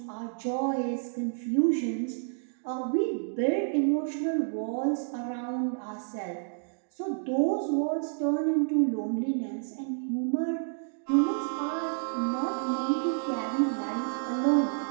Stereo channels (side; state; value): left; silent; digital silence